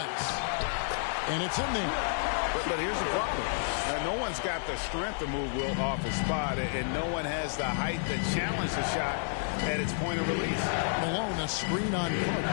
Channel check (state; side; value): silent; right; digital silence